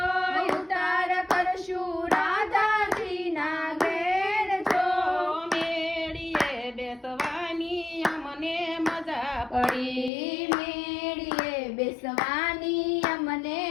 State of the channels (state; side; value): drops out; right; at 10.1 s